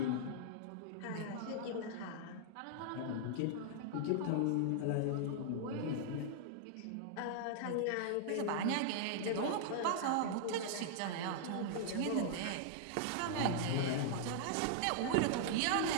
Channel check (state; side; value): different; both; correlation -0.01